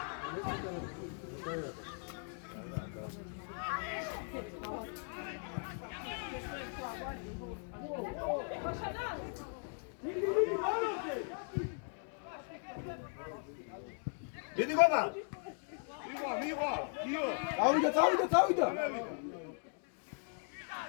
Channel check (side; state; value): right; silent; 52 dB below the other